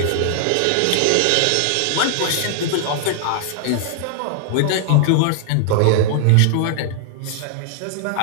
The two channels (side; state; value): both; different; correlation -0.01